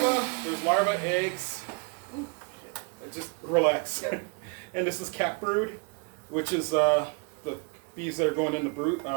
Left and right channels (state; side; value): quieter; left; 35.0 dB